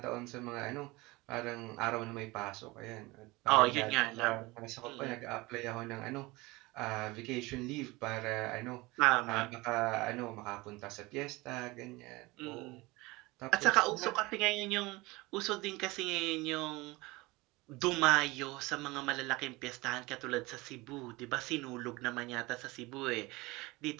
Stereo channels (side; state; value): left; quieter; 22.3 dB